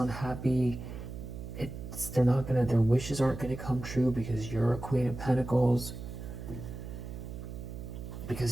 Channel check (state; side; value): noise; right; hum, 9 dB below the sound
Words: Their wishes aren't gonna come true because you're a Queen of Pentacles,